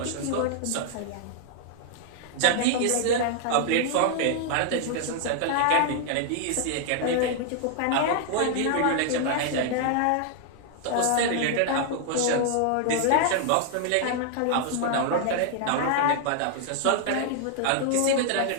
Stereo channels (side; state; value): both; different; correlation 0.00